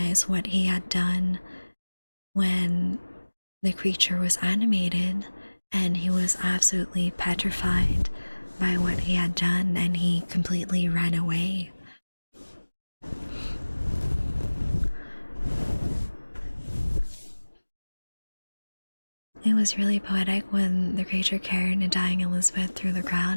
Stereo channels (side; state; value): both; inverted; correlation -1.00